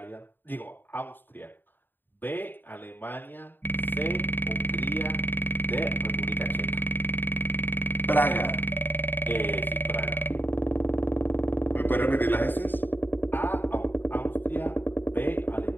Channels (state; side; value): late; right; 0.093 ms